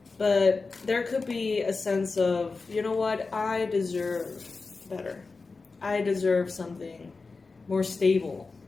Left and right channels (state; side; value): quieter; right; 4.1 dB